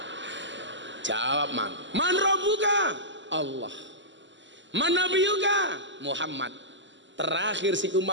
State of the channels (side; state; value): left; late; 0.54 ms